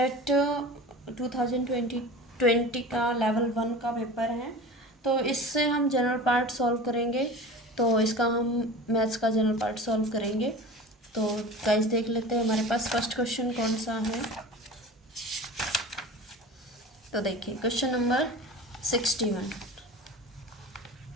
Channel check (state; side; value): normal; both; correlation 0.35